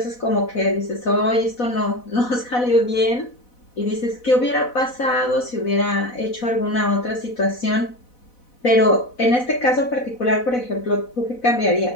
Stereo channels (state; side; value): late; right; 4.0 ms